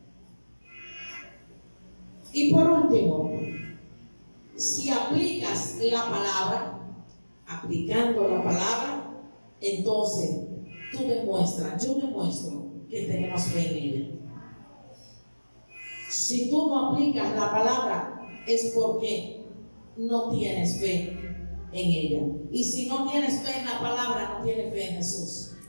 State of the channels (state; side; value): inverted; both; correlation -1.00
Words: Y por último, si aplicas la palabra, aplicando la palabra, entonces tú demuestras, yo demuestro que tenemos fe en ella. Si tú no aplicas la palabra, es porque no tienes fe en ella. Y si no tienes fe en la palabra, no tienes fe en Jesús,